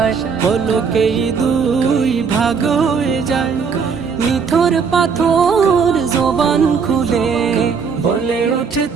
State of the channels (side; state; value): left; quieter; 5.8 dB